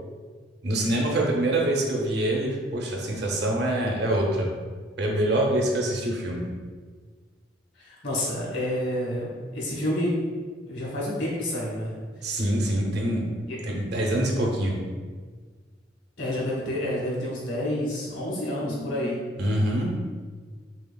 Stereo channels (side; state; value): both; normal; correlation 0.57